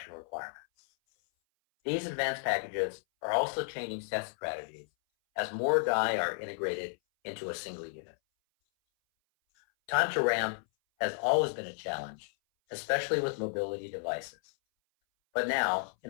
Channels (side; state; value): right; silent; 56 dB below the other